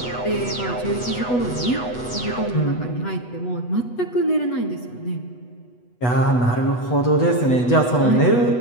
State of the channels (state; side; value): late; right; 8.1 ms